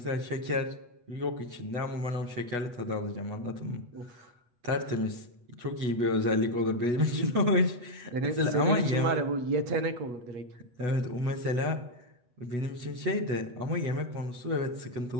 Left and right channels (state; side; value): late; left; 8.2 ms